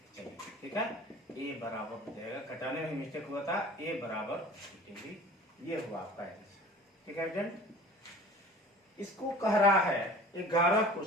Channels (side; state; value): both; normal; correlation 0.43